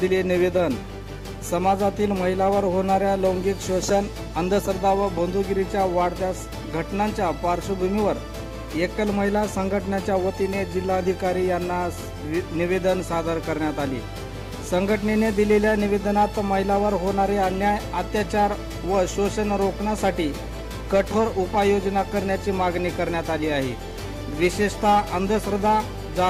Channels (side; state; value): both; identical; correlation 1.00